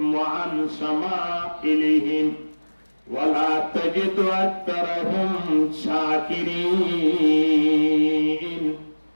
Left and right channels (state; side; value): inverted; both; correlation -1.00